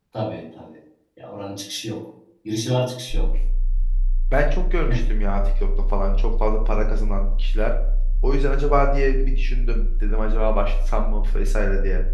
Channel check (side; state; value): both; identical; correlation 1.00